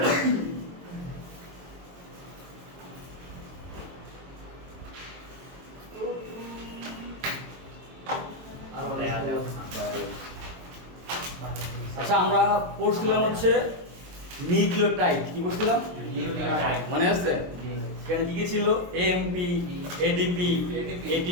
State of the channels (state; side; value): late; left; 23 ms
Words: আচ্ছা আমরা পড়ছিলাম হচ্ছে নিউক্লিওটাইড। কি পড়ছিলাম? মনে আছে? এখানে কি কি ছিল? এএমপি, এডিপি,